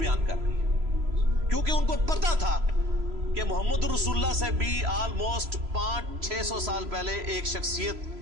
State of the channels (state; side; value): late; left; 3.0 ms